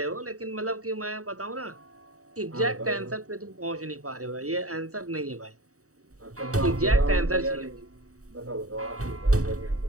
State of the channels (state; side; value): late; left; 0.65 ms